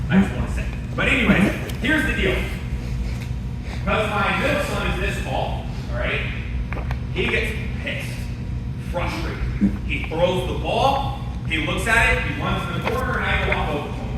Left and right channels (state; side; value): identical; both; correlation 1.00